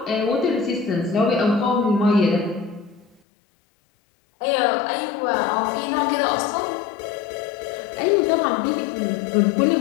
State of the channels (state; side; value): drops out; right; at 3.2 s